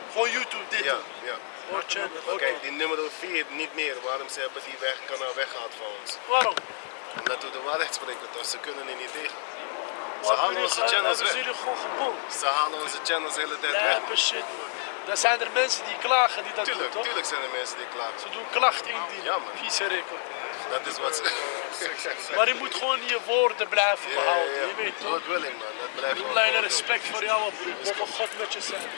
Gewoon YouTube dit. Ja. Oh, channel. Oké. Kijk, die nummer 4 niet meer. Waarom ze hebben die kanaal weggehaald van ons? Waarom? Omdat we de waarheid spreken, dus ze kunnen er niet tegen. Ze Waarom halen onze channels hebben ze weg. jullie gewoon gebonden? Ze halen onze channels de hele tijd weg. Lijpe shit man. Dan zijn er mensen die klagen die dat doen toch? Tuurlijk zijn er mensen die klagen. Ze doen klachten indienen. Ja, man. Vieze record. Dat is wat ze... Maar je moet gewoon je woorden blijven behouden. Je weet toch? Dat wil ik man, dat blijft gewoon. Alleen respect voor jou, broer. Mogen God met je zijn.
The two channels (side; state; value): right; silent; digital silence